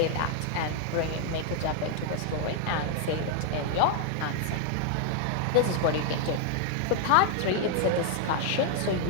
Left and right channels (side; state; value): both; different; correlation 0.00